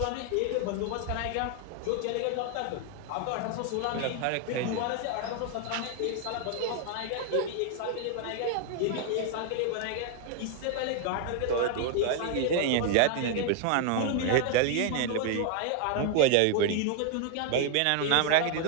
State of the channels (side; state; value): both; different; correlation 0.01